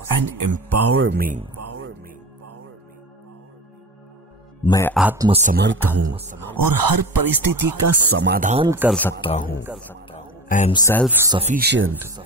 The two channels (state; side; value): normal; both; correlation 0.30